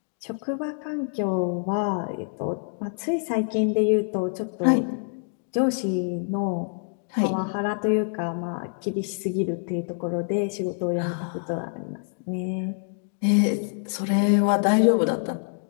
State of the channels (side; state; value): right; silent; digital silence